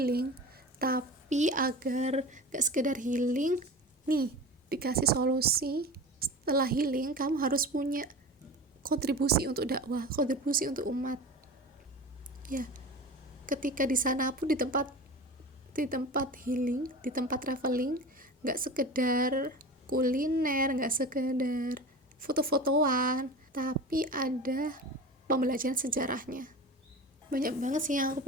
tapi agar gak sekedar healing, nih dikasih solusi. Setelah healing, kamu harus punya kontribusi untuk dakwah, kontribusi untuk umat. Ya, ketika di sana pun di tempat healing, di tempat traveling, gak sekedar kuliner, gak sekedar foto-fotoan, tapi ada pembelajaran sejarahnya. Banyak banget sih yang aku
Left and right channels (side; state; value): both; normal; correlation 0.33